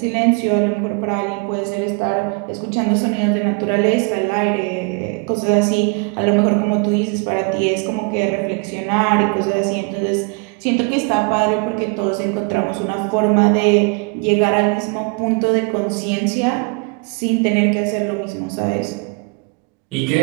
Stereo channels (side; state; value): left; quieter; 32.4 dB